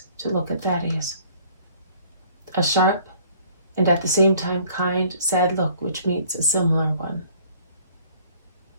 to look at Thaddeus. A sharp and at the same time kind, sad look which meets a similar one.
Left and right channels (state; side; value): inverted; both; correlation -0.56